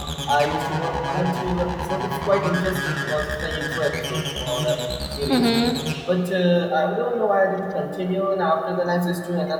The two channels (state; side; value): identical; both; correlation 1.00